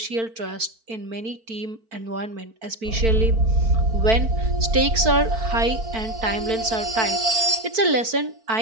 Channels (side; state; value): left; late; 4.5 ms